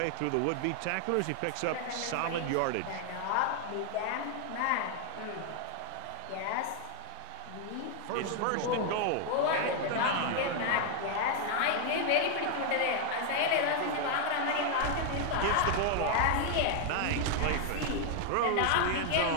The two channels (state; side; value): different; both; correlation 0.00